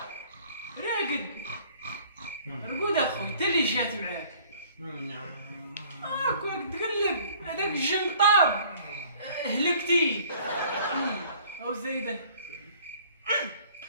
رقد اخوي انت اللي جات معاك. كون تقلب هذاك الجنطاب هلكتي او زايده.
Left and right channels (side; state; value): both; inverted; correlation -0.54